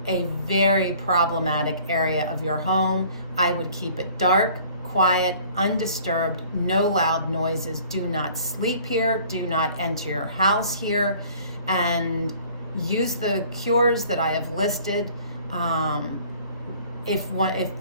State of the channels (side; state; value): both; inverted; correlation -0.52